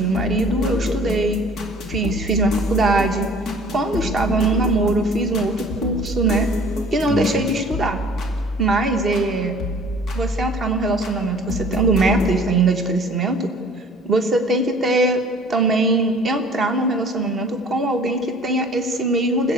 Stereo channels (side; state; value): both; normal; correlation 0.50